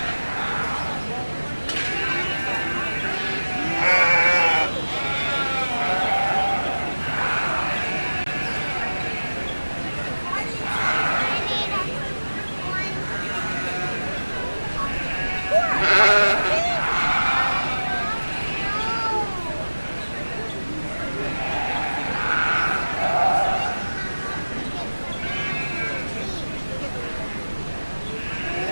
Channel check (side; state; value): both; inverted; correlation -1.00